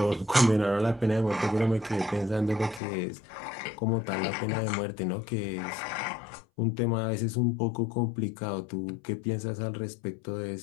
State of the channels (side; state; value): right; drops out; at 2.8 s